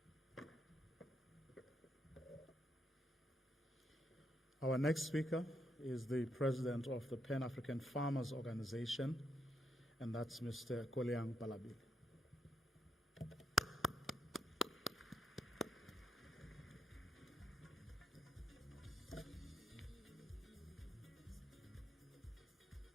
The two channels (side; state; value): both; normal; correlation 0.78